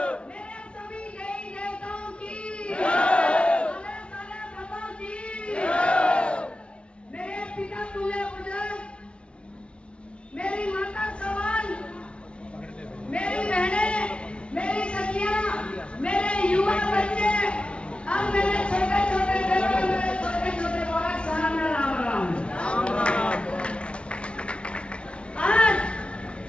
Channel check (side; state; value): right; late; 0.059 ms